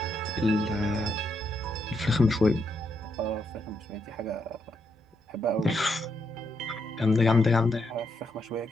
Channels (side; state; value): both; normal; correlation 0.79